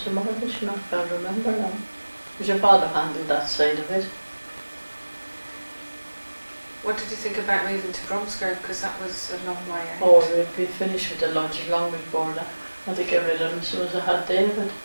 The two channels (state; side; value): inverted; both; correlation -1.00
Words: a mortgage, I can't remember now. Because your father handled that side of it. What did you think about moving to Bromsgrove? Because that was a long way out. Oh, we'd be finished with the lodge long before that. I had to get rid of him as soon as I had David.